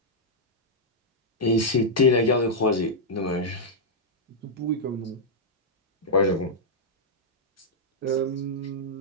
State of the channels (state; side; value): normal; both; correlation -0.06